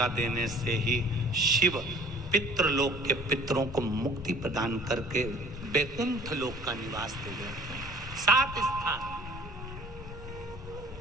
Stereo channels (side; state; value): both; normal; correlation 0.51